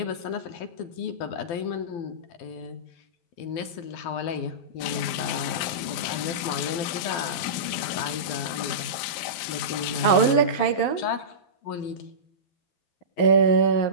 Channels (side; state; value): right; late; 12 ms